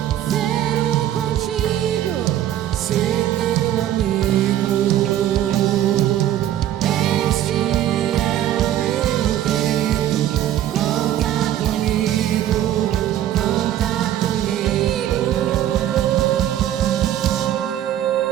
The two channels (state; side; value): quieter; left; 12.0 dB